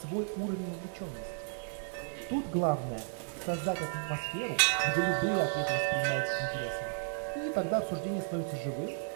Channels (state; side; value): silent; left; digital silence